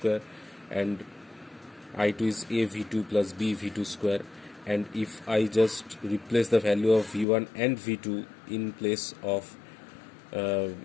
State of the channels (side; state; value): right; drops out; at 7.2 s